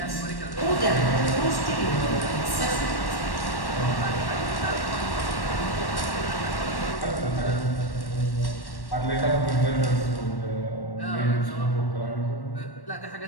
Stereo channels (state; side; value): late; right; 1.1 ms